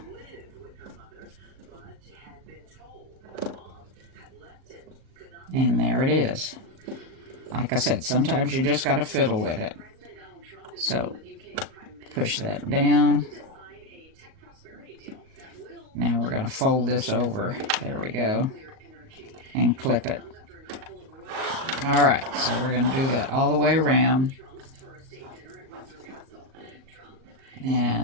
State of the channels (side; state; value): left; late; 38 ms